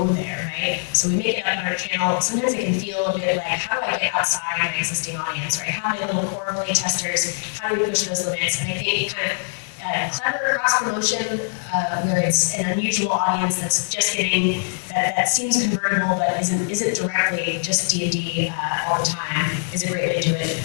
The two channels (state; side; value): silent; right; 57 dB below the other